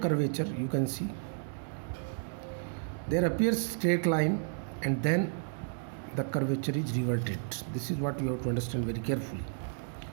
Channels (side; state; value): left; silent; digital silence